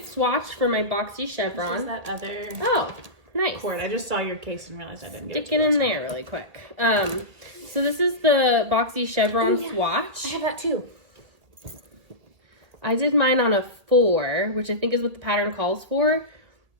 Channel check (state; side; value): late; left; 1.6 ms